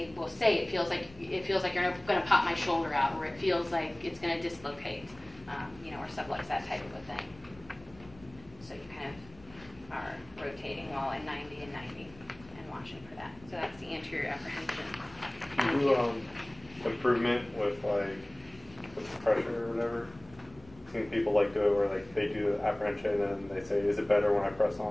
will say, it feels like you're going to pop my shoulder out, or it feels like it's going to dislocate, or stuff like that type of a thing. So you kind of are rotating while at 90 and 90 and watching for that. So that's the anterior apprehension. Do you improvement with with pressure or whatever? I've seen people do it where they do the apprehension and they say, is it better when I press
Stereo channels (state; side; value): noise; left; rumble, 23 dB below the sound